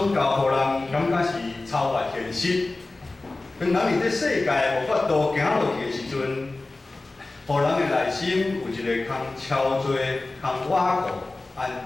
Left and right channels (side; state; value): right; quieter; 3.2 dB